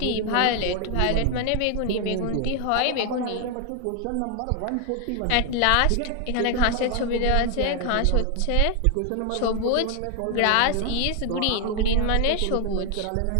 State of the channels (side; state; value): both; different; correlation 0.00